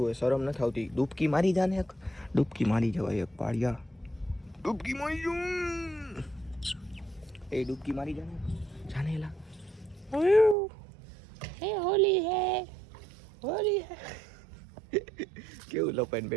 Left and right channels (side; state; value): left; drops out; at 10.6 s